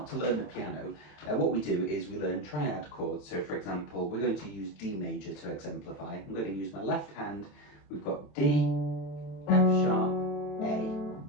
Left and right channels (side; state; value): right; late; 27 ms